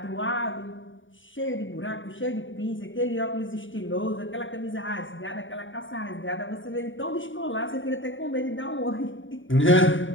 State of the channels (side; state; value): right; late; 0.56 ms